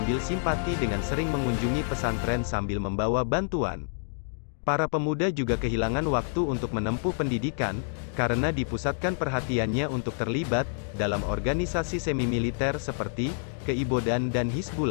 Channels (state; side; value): silent; right; digital silence